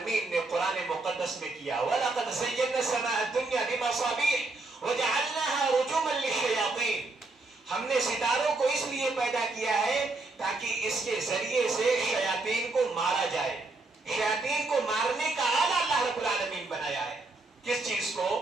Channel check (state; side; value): quieter; left; 3.3 dB